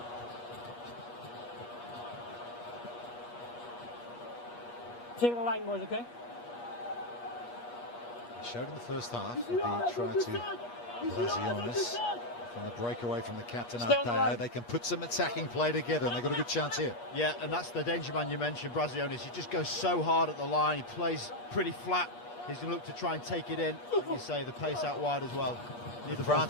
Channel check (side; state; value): right; late; 8.4 ms